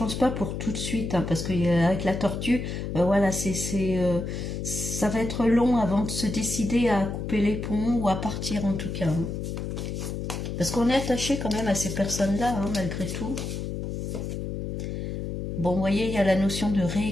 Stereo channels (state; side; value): noise; left; hum, 4 dB below the sound